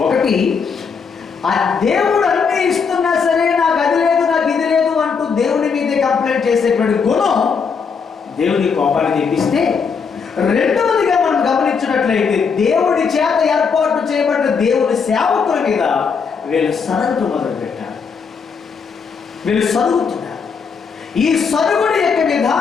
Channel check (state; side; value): quieter; right; 5.8 dB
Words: ఒకటి, ఆ దేవుడు అన్ని ఇస్తున్నా సరే నాకు అది లేదు, నాకు ఇది లేదు అంటూ దేవుని మీదే కంప్లైంట్ చేసేటువంటి గుణం దేవుని కోపాన్ని తెప్పిస్తే, రెండవదిగా మనం గమనించినట్లయితే దేవుడి చేత ఏర్పాటు చేయబడిన దేవుని సేవకుల మీద వీళ్ళు సరగటం మొదలుపెట్టారు. వీళ్ళు సరుగుతున్నారు. ఈ సరుగుడి యొక్క